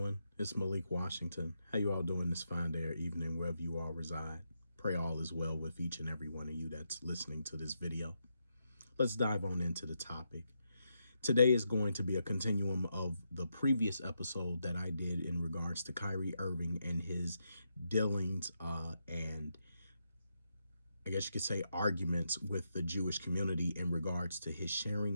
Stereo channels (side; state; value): both; inverted; correlation -0.82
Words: It's Malik Washington. How you all doing this fine day or evening, wherever you all reside? Pray all is well with each and every one of you that's listening to this video. Let's dive on into the topic. Today is going to be a continuum of the previous episode that I did in regards to Kyrie Irving and his dealings and I guess you could say arguments with the Jewish community in regards to his